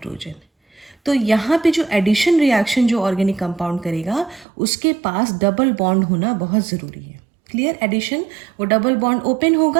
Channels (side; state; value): left; drops out; at 4.5 s